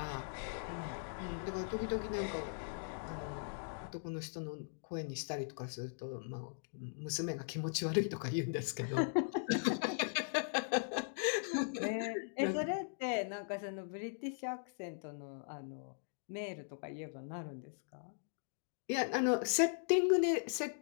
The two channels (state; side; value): silent; right; digital silence